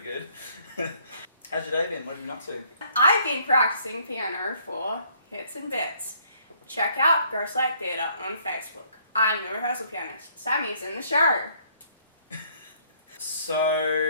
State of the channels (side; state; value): both; inverted; correlation -0.64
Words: How's your day been? What have you been up to? I've been practicing piano for Hits and Bits. Check out Ghostlight Theatre on Facebook. I'm the rehearsal pianist. Sami's in the show.